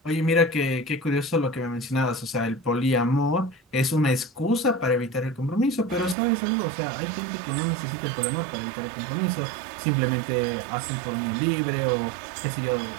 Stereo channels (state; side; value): drops out; left; at 6.2 s